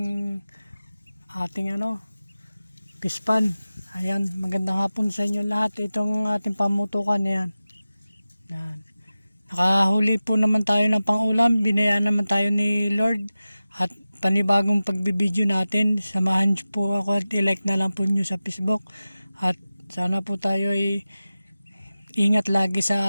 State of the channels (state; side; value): inverted; both; correlation -0.96